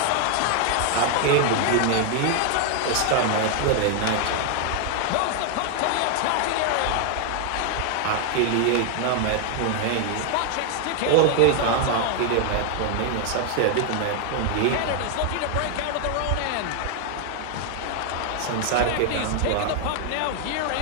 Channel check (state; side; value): different; both; correlation 0.00